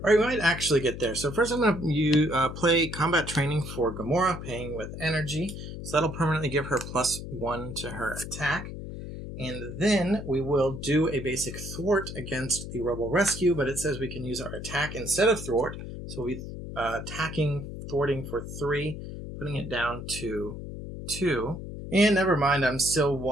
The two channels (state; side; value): noise; left; hum, 9 dB below the sound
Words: All right, we might actually get there. So first I'm going to play Combat Training for Gamora, paying with Energy. So that'll permanently give her +1 to her attack. And then we will do a basic thwart against the Rebel Rescue, but it says we can use our attack instead of thwart. So we'll be attacking, thwarting for 3, putting it down to 2. And never mind, I'm still